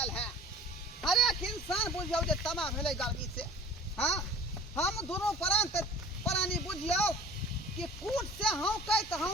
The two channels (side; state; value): both; normal; correlation 0.45